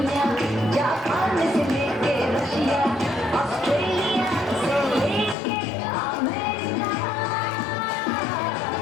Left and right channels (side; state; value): right; drops out; at 5.4 s